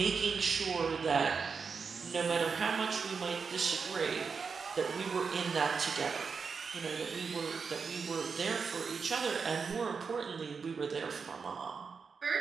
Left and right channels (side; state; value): left; quieter; 5.4 dB